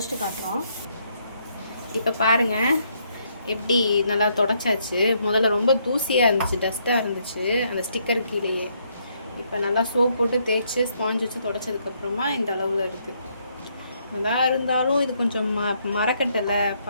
காட்டுறோம். இப்போ பாருங்க எப்படி நல்லா தொடச்சாச்சு. முதல்ல ரொம்ப தூசியாக இருந்துச்சு, டஸ்ட்டாக இருந்துச்சு அந்த ஸ்டிக்கர் கீழேயே. இப்போ நல்லா சோப் போட்டு தேய்ச்சி ஸ்பாஞ்ச் வச்சு தொடச்சதுக்கப்புறமா இந்த அளவில் இருக்குது. நல்லா இருந்தாலும் இது கொஞ்சம் மரக்கட்டலை,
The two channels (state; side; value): inverted; both; correlation -0.73